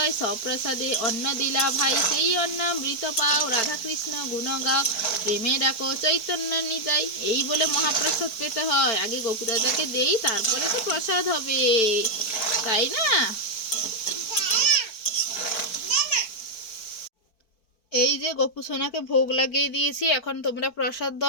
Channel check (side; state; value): right; late; 4.5 ms